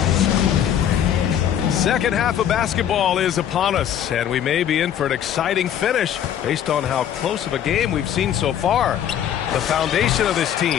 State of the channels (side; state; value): right; quieter; 9.9 dB